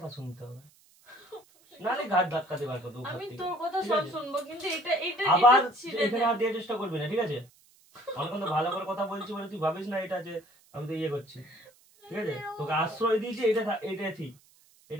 শুনতে হবে, নালে ঘাট ধাক্কাতে বার করবো। আমি তোর কথা ঠিক সব আছে? শুনবো, কিন্তু এটা এটা আবার এটা ছিঁড়ে দে। এখানে আর দেওয়ার চেষ্টা করবি না, ঠিক আছে? আমি কিন্তু ভালো করে কথা বলছি বলে তুই ভাবিস না এটা যে আমি তো ইয়ে করছি। ঠিক আছে, তোকে আশ্রয় দিয়েছি, এটা ঠিক,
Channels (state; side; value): noise; right; hiss, 30 dB below the sound